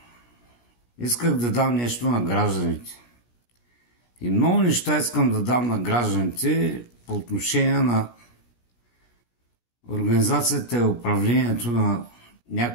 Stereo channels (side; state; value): right; late; 17 ms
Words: Исках да дам нещо на гражданите. И много неща искам да дам на гражданите по отношение на организацията и управлението на